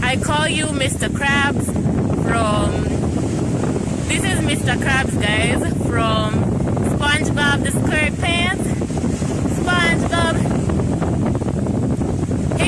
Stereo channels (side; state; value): both; identical; correlation 1.00